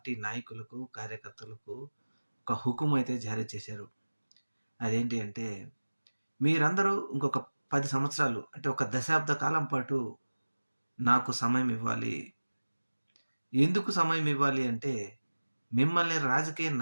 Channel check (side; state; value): both; inverted; correlation -1.00